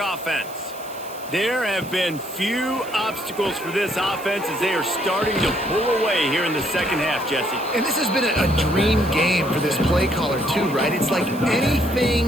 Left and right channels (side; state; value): right; noise; hiss, 18 dB below the sound